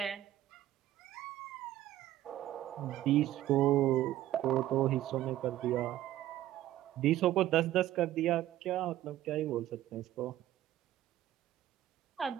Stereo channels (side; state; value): left; quieter; 13.7 dB